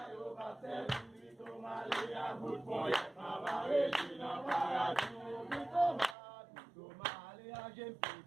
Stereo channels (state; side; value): drops out; left; at 6.2 s